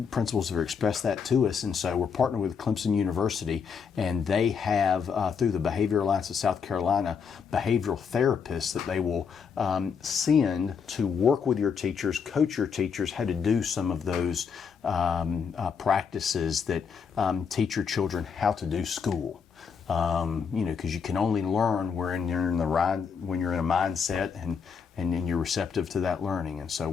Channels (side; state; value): right; quieter; 6.3 dB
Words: principals have expressed that to us, and so we're partnering with Clemson University, and they have, through the Behavior Alliance of South Carolina, behavioral therapists that they will send to work with your teachers, coach your teachers how to do some of those practices that teach your children how to do school. Because you can only learn when you're in a mindset and you're receptive to that learning. And so